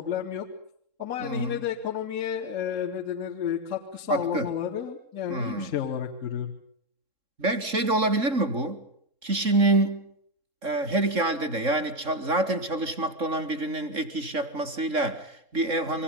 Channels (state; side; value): late; left; 3.7 ms